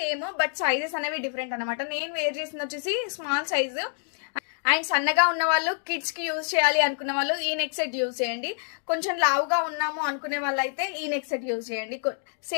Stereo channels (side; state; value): right; silent; 60 dB below the other